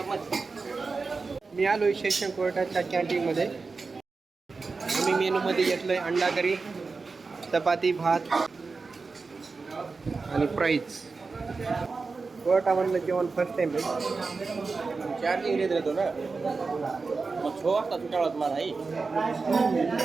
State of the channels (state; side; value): quieter; left; 4.3 dB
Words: मी आलो आहे सेशन कोर्टाच्या कॅन्टीनमध्ये. आम्ही मेनूमध्ये घेतलं आहे अंडा करी, चपाती, भात आणि फ्राईज. कोर्टामधलं जेवण फर्स्ट टाइम आहे. चार्जिंग घेत राहतो ना, मग 6 वाजता सुटाळात मला आहे